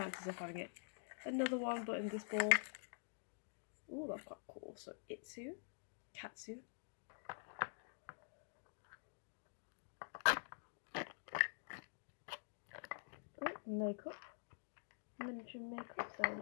of having it. Another one, but in this ball. Oh, that's quite cool. So Itsu, Katsu. Oh, makeup, miniature makeup. So it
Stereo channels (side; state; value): right; silent; digital silence